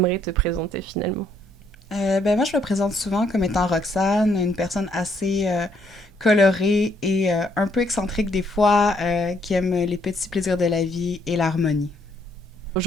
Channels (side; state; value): both; normal; correlation 0.70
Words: te présenter finalement ? Moi, je me présente souvent comme étant Roxane, une personne assez colorée et un peu excentrique des fois, qui aime les petits plaisirs de la vie et l'harmonie.